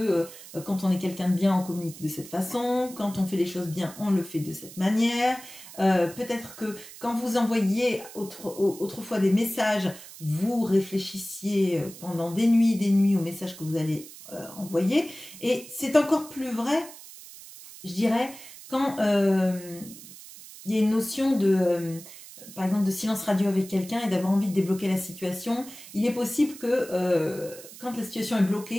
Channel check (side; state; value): right; noise; hiss, 16 dB below the sound